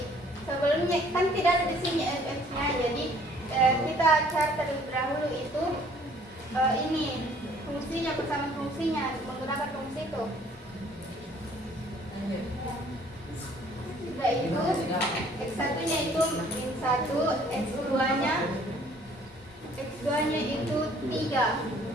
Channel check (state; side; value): normal; both; correlation 0.58